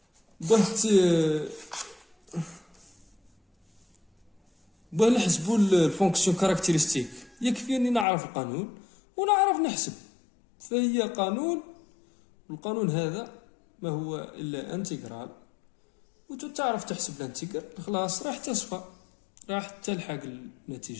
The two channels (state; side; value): drops out; right; at 8.1 s